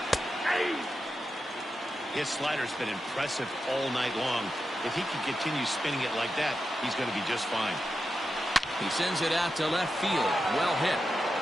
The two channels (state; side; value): normal; both; correlation 0.89